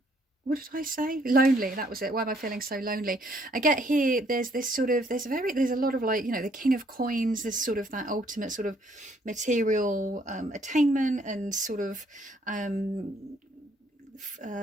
what did I say? Lonely, that was it. Why am I feeling so lonely? I get here, there's this sort of, there's a lot of like, you know, the King of Coins, this sort of that ultimate sort of material attainment and sort of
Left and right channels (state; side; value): normal; both; correlation 0.66